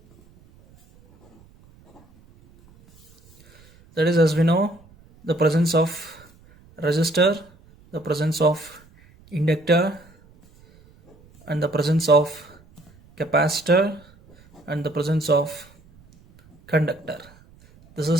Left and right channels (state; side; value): noise; right; rumble, 28 dB below the sound